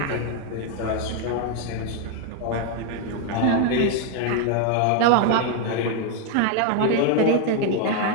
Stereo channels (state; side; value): different; both; correlation 0.01